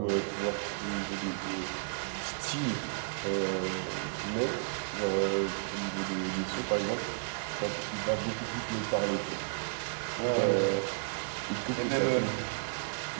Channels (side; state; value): left; silent; digital silence